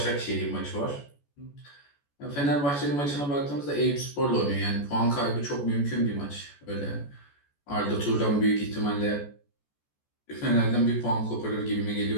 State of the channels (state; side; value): late; right; 14 ms